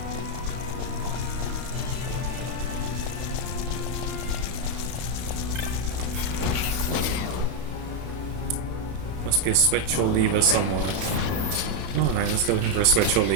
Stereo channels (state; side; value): late; left; 31 ms